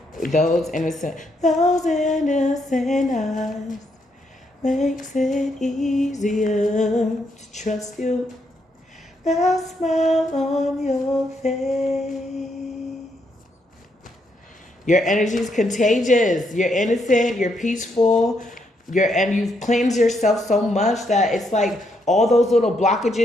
Those innocent eyes makes it easier to trust you. That smile on your face. Your energy is contagious. You're innocent. You're peaceful. and you've cleansed yourself so much that it's like all those little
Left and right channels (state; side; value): normal; both; correlation 0.76